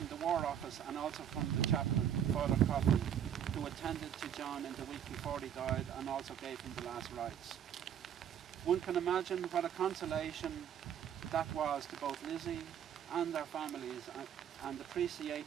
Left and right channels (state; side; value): quieter; left; 9.3 dB